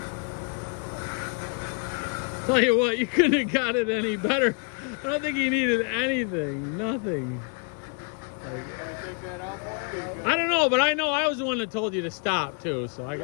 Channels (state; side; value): quieter; right; 37.7 dB